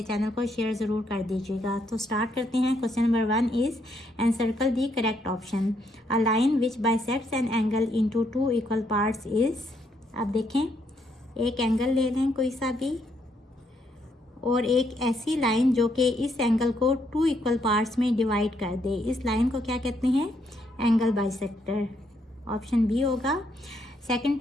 चैनल को शेयर ज़रूर कर दीजिएगा। तो स्टार्ट करते हैं। Question number 1 is encircle the correct option. A line which bisects an angle into two equal parts is. अब देखें, एक एंगल ले लें कोई सा भी और एक ऐसी लाइन जो कि इस एंगल को टू इक्वल पार्ट्स में डिवाइड कर दे, इस लाइन को क्या कहते हैं? Angle bisector. ऑप्शन बी होगा। Second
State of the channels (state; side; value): normal; both; correlation 0.74